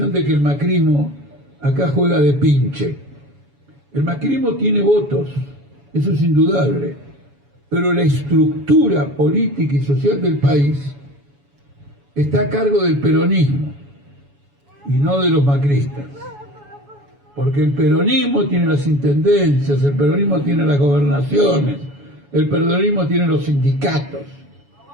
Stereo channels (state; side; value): late; left; 7.1 ms